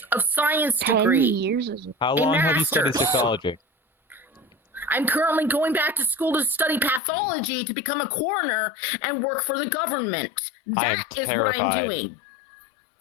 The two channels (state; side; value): drops out; right; at 7.0 s